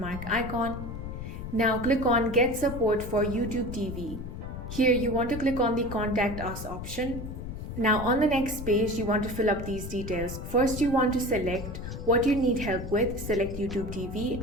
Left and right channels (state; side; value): noise; left; rumble, 8 dB below the sound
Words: icon. Now click on Get Support for YouTube TV. Here you want to click on the Contact Us option. Now on the next page, you want to fill up these details. First, you want to select what you need help with, select YouTube TV.